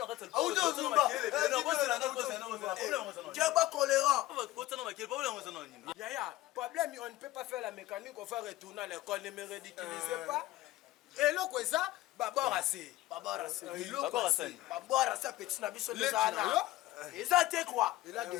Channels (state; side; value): quieter; right; 16.5 dB